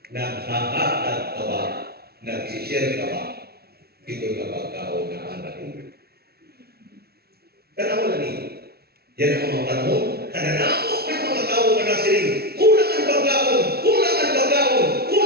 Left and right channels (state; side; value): late; left; 0.45 ms